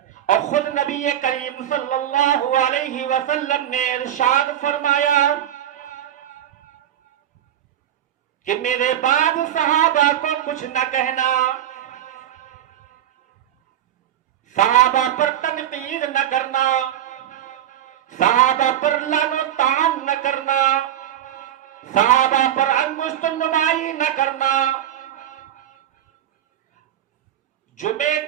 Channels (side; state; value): left; quieter; 11.0 dB